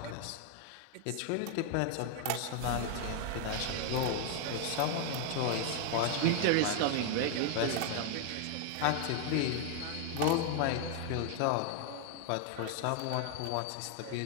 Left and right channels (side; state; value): both; different; correlation 0.00